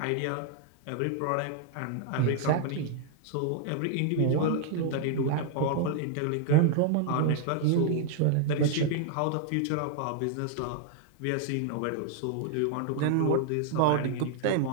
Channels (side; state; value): both; different; correlation 0.00